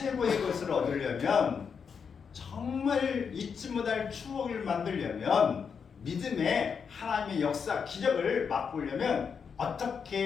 것을 얻으려면 정말 잊지 못할 추억을 만들려면 믿음의 하나님의 역사, 기적을 맛보려면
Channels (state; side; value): quieter; right; 6.3 dB